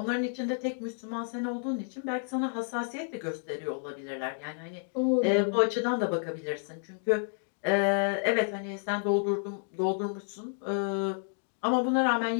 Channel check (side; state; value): right; silent; digital silence